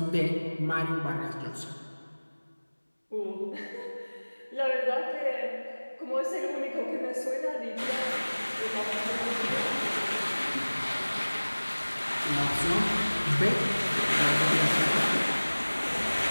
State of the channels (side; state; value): both; inverted; correlation -1.00